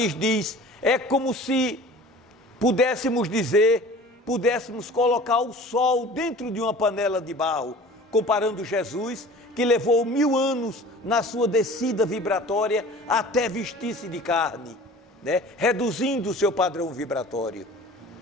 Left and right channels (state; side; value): normal; both; correlation 0.43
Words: diz, é como se pudéssemos colocar o sol dentro de uma panela de barro, comparando Jesus, que levou 1000 anos na sua descida vibratória até vestir-se de carne, né? Reduzindo o seu padrão vibratório,